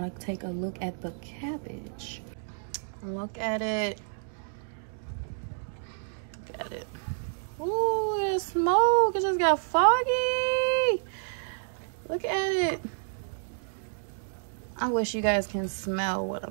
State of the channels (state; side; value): silent; left; 58 dB below the other